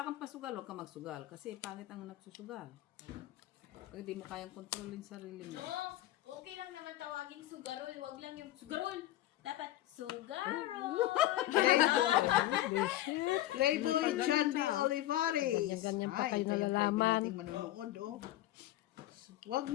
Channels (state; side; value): quieter; right; 14.8 dB